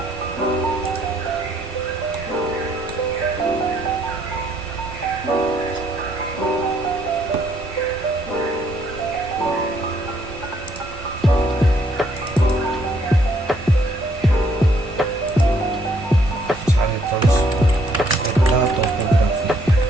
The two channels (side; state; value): both; normal; correlation 0.68